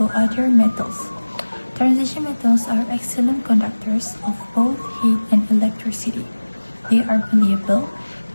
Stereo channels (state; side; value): inverted; both; correlation -1.00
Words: other metals. Transition metals are excellent conductors of both heat and electricity. They are malleable,